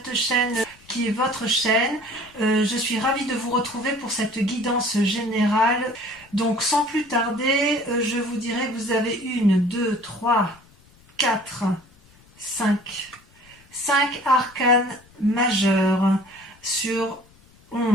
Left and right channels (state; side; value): noise; left; rumble, 28 dB below the sound